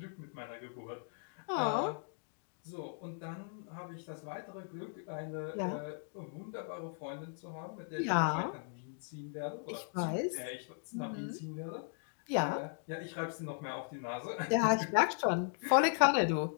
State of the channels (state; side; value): silent; right; digital silence